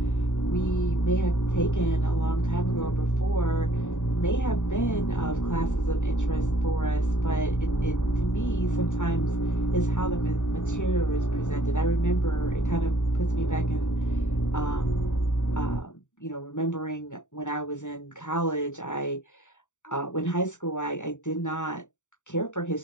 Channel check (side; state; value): right; late; 0.86 ms